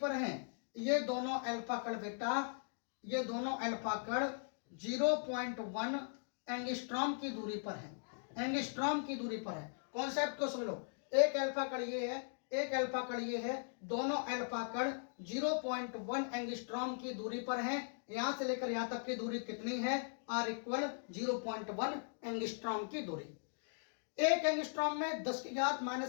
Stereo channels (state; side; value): silent; right; digital silence